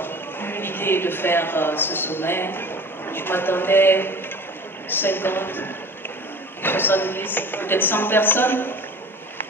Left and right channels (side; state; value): both; normal; correlation 0.40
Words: l'idée de faire ce sommet, je m'attendais 50, 70, peut-être 100 personnes.